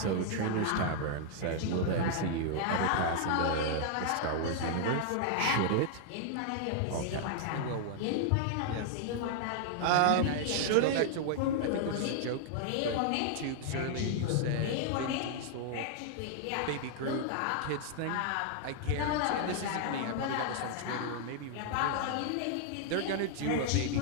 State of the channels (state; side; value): different; both; correlation -0.01